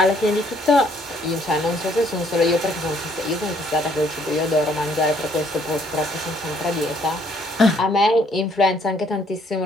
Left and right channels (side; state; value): both; normal; correlation 0.65